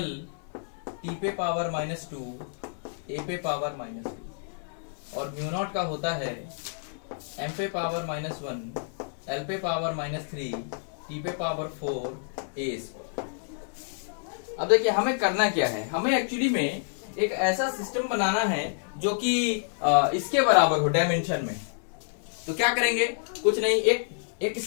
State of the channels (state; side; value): silent; right; digital silence